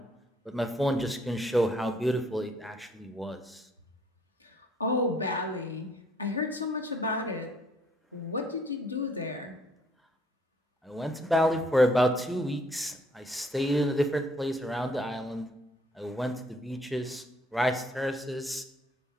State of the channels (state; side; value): normal; both; correlation 0.64